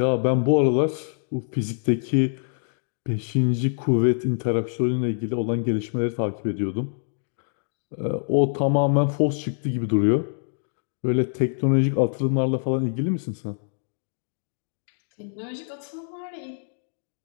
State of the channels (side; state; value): right; silent; digital silence